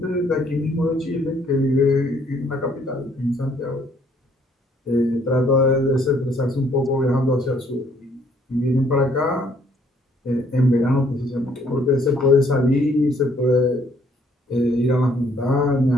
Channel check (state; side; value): normal; both; correlation 0.65